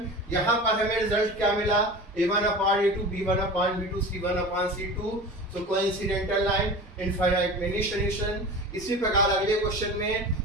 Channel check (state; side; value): normal; both; correlation 0.34